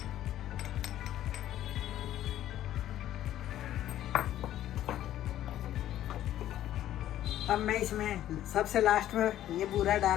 अब मैं इसमें सबसे लास्ट में ये बूरा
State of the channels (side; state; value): right; quieter; 12.5 dB